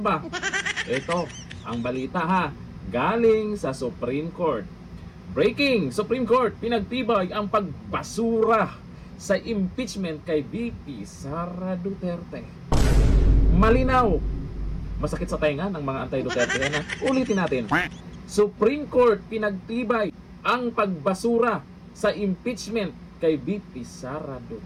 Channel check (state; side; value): identical; both; correlation 1.00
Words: Ito, ang balita ha, galing sa Supreme Court. Breaking! Supreme Court, pinagtibay ang pagbasura sa impeachment kay BP Sara Duterte. Malinaw! Masakit sa tenga ng mga anti-Duterte yan ha. Ulitin natin. Supreme Court, pinagtibay ang pagbasura sa impeachment kay BP Sara